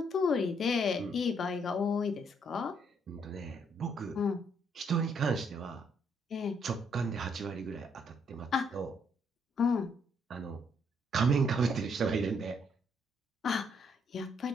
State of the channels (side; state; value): both; normal; correlation 0.71